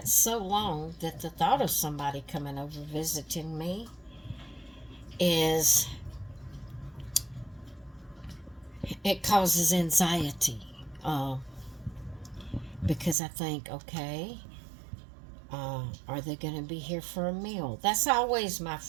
so long that the thought of somebody coming over visiting me it causes anxiety, because I think, okay, are they going to be here for a meal? That's always my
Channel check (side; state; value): left; drops out; at 13.2 s